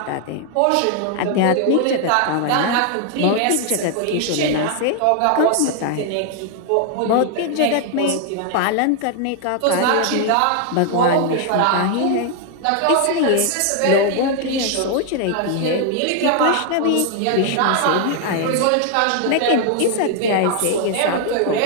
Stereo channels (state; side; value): different; both; correlation 0.00